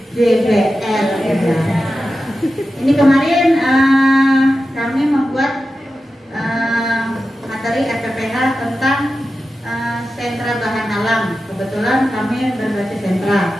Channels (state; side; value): normal; both; correlation 0.92